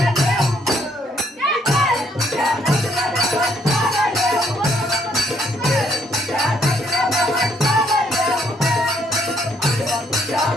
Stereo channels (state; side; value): normal; both; correlation 0.69